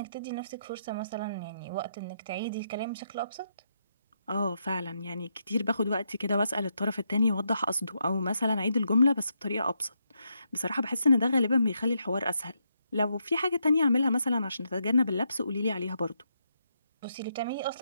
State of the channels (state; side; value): inverted; both; correlation -0.80